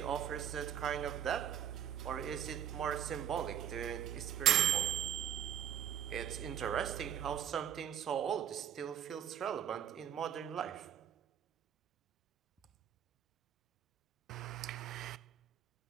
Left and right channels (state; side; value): quieter; left; 9.4 dB